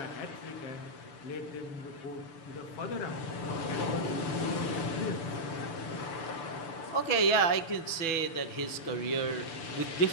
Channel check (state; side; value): late; right; 6.2 ms